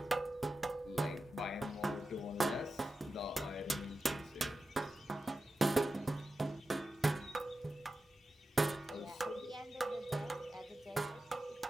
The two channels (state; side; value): normal; both; correlation 0.92